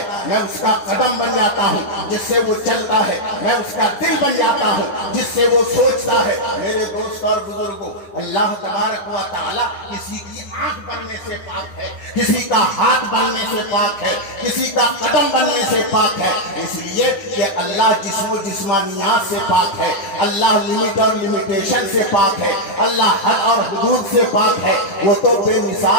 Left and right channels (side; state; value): right; late; 10 ms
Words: میں اس کا قدم بن جاتا ہوں جس سے وہ چلتا ہے, میں اس کا دل بن جاتا ہوں جس سے وہ سوچتا ہے. میرے دوست اور بزرگوں, اللہ تبارک و تعالی کسی کی آنکھ بننے سے پاک ہے, کسی کا ہاتھ بننے سے پاک ہے, کسی کا قدم بننے سے پاک ہے, اس لیے کہ اللہ جسم و جسمانیات سے پاک ہے, اللہ لمٹ اور لمیٹیشن سے پاک ہے, اللہ حد اور حدود سے پاک ہے. وہ تو بے